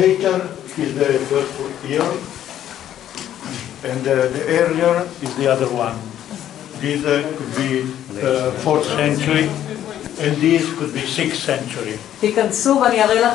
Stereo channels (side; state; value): right; quieter; 11.3 dB